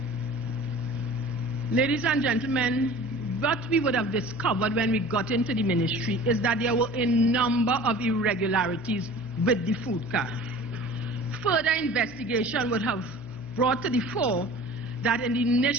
Ladies and gentlemen, what we would have discovered when we got into the ministry is that there were a number of irregularities with the food card. Further investigation would have brought to the fore that in the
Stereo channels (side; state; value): left; noise; hum, 19 dB below the sound